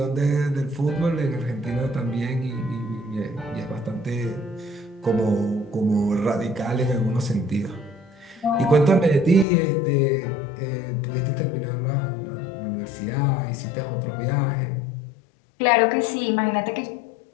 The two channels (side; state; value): right; drops out; at 9.5 s